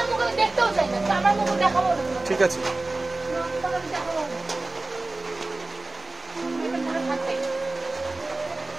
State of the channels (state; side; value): quieter; left; 3.0 dB